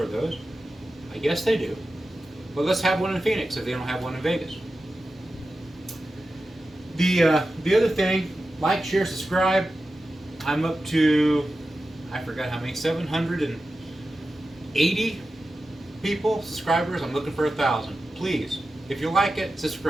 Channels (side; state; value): both; normal; correlation 0.93